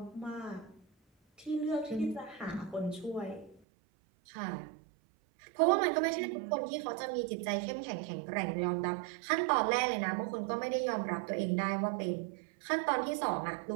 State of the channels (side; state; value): left; drops out; at 3.6 s